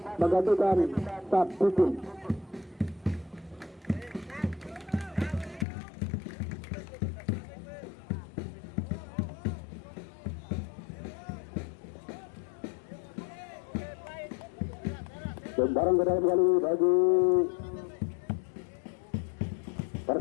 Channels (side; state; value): right; drops out; at 5.7 s